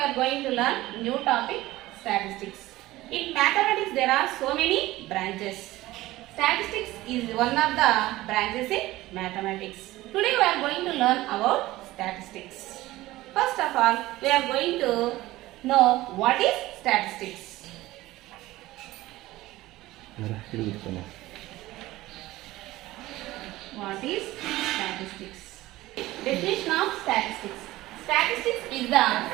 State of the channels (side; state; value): left; quieter; 17.5 dB